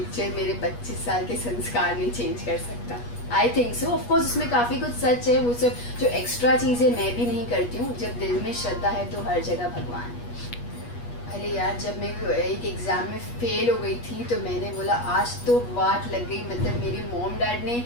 मेरे 25 साल के संस्कार नहीं चेंज कर सकता। I think so. ऑफकोर्स उसमें काफ़ी कुछ सच है, वो सब जो एक्स्ट्रा चीज़ें मैं भी नहीं करती हूँ। जब दिल में श्रद्धा है तो हर जगह भगवान है। अरे यार, जब मैं एक एग्ज़ाम में फ़ेल हो गई थी तो मैंने बोला आज तो वाट लग गई। मतलब मेरे मॉम डैड ने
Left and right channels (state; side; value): late; right; 8.3 ms